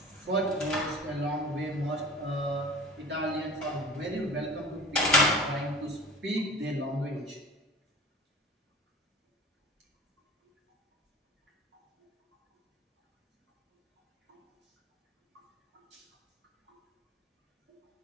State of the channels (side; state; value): both; normal; correlation 0.39